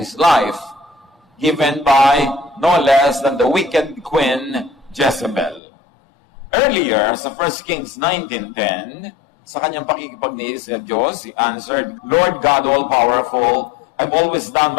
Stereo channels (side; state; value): right; drops out; at 5.6 s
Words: life, given by no less than the wicked queen Jezebel. Earlier, sa 1 Kings 19:10, sa kanyang pakikipagniis sa Diyos, he answered, Lord God all-powerful, I've always done